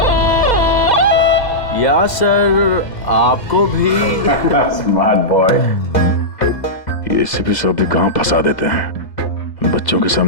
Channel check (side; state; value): right; late; 2.0 ms